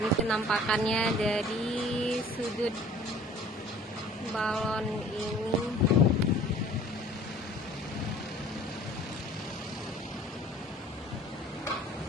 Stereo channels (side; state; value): both; normal; correlation 0.50